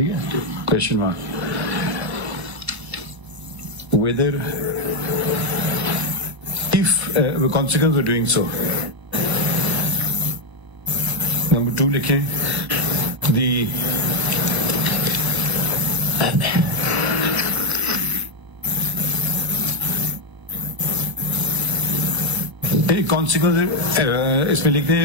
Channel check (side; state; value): left; late; 1.0 ms